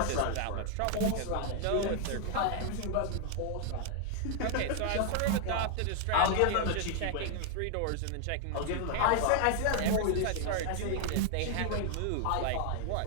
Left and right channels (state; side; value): different; both; correlation 0.00